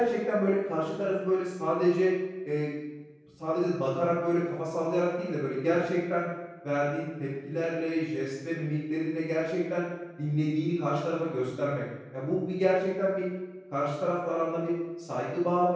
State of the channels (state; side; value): identical; both; correlation 1.00